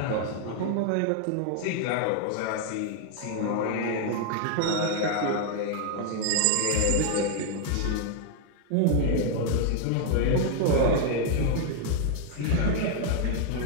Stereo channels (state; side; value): different; both; correlation 0.00